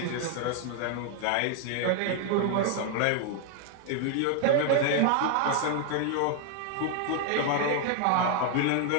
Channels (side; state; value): both; different; correlation 0.00